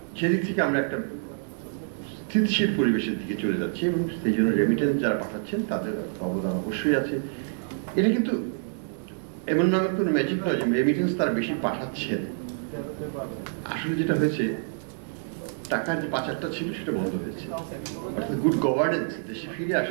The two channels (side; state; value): left; silent; digital silence